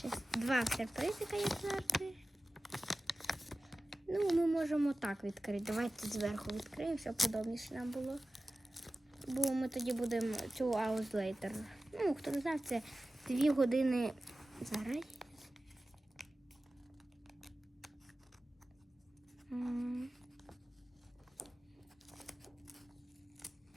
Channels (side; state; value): both; normal; correlation 0.96